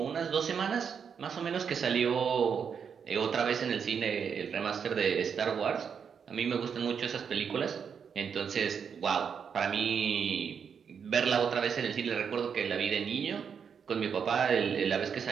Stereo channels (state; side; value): quieter; left; 6.9 dB